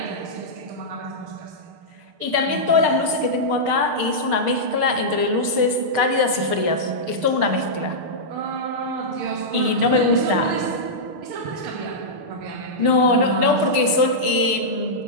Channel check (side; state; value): left; late; 6.5 ms